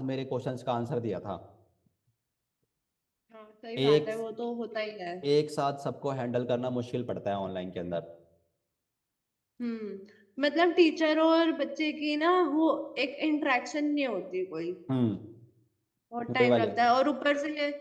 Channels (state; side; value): identical; both; correlation 1.00